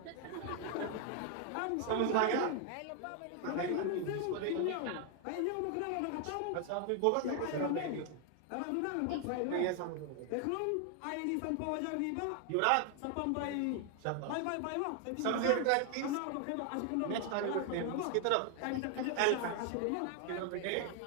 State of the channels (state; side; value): different; both; correlation 0.00